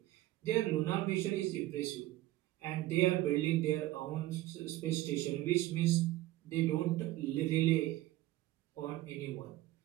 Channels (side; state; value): left; quieter; 16.2 dB